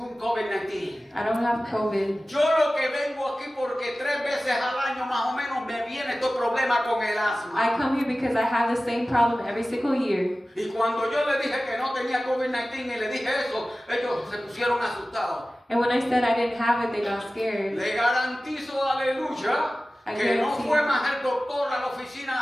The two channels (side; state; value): both; normal; correlation 0.96